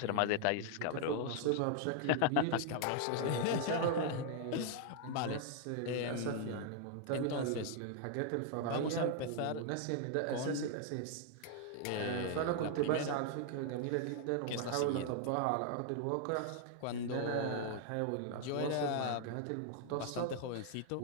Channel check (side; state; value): both; different; correlation 0.00